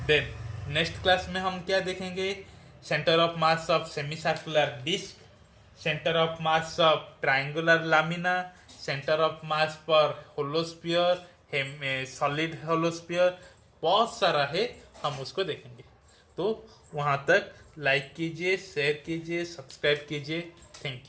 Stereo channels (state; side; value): identical; both; correlation 1.00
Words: देन नेक्स्ट क्लास में हम क्या देखेंगे, centre of mass of semi circular disc, centre of mass of triangular lamina, centre of mass पर होलोस्फीयर, सॉलिड होलोस्फीयर, बहुत सारा है, हम उसको देखेंगे। तो वहाँ तक लाइक कीजिए, शेयर कीजिए, सब्सक्राइब कीजिए। Thank